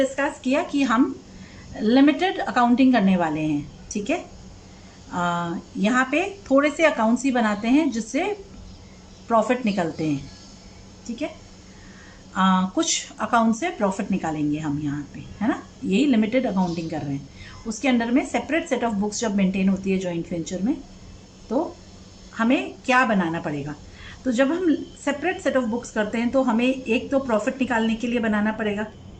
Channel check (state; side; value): identical; both; correlation 1.00